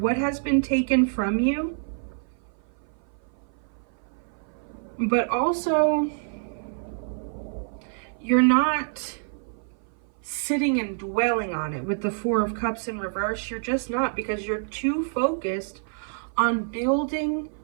has been taken from you. But also, you're not sitting and dwelling on it with the Four of Cups in reverse. You're just not, because you're too focused on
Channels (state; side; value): silent; left; 56 dB below the other